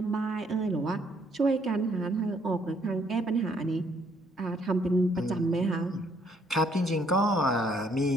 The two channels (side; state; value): both; normal; correlation 0.67